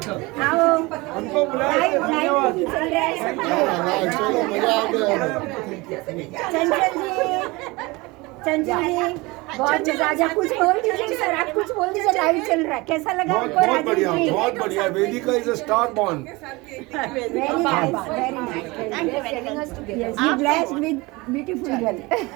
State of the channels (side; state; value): left; quieter; 23.5 dB